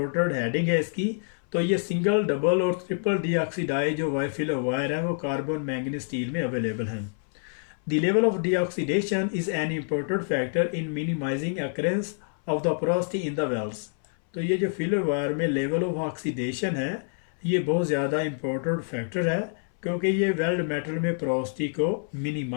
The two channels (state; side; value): silent; right; 60 dB below the other